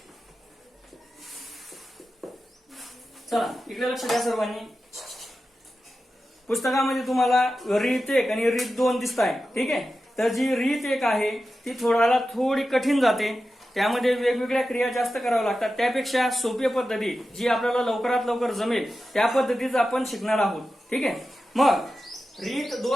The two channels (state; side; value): normal; both; correlation 0.92